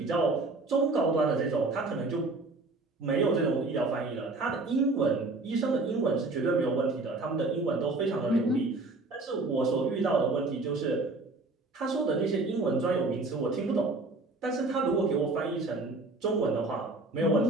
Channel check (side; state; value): left; quieter; 3.3 dB